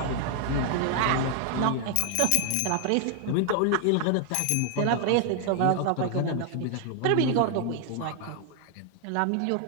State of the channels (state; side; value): different; both; correlation 0.00